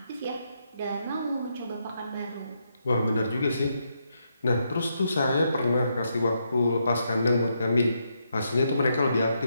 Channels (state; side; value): inverted; both; correlation -0.80